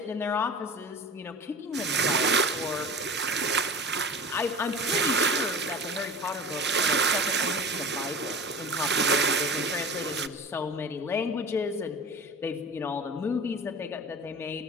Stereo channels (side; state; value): both; normal; correlation 0.35